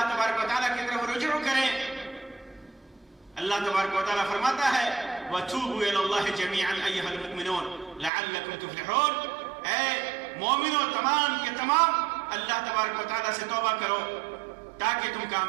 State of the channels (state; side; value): drops out; left; at 8.1 s